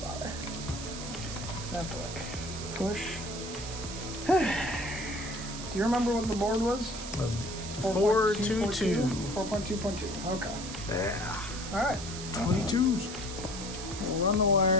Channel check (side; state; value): right; noise; hiss, 9 dB below the sound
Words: So I have to like push. Do you remember what the board was? 422. 4.2.2. Okay. Yeah. All right. 22s. We'll run the